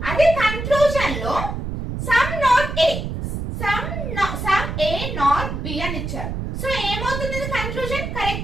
అదే కన్క్లూజన్ లో some not A, some A not B అని ఇచ్చారు. సో ఏమవుతుంది? కన్క్లూజన్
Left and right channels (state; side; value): noise; right; rumble, 4 dB below the sound